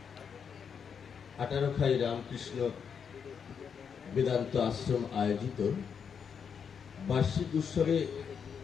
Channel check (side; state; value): right; quieter; 6.9 dB